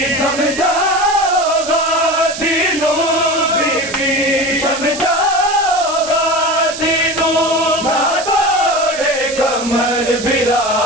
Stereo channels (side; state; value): right; noise; hiss, 9 dB below the sound